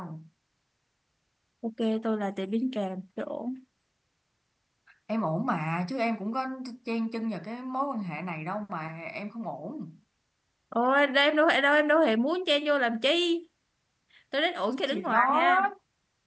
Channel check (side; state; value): both; identical; correlation 1.00